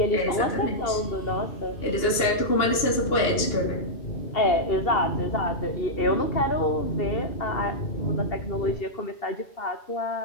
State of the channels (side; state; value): right; late; 2.9 ms